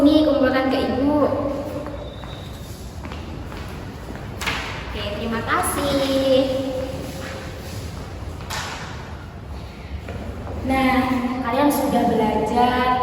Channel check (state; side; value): identical; both; correlation 1.00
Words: kumpulkan ke Ibu. Oke, terima kasih. Nah, kalian sudah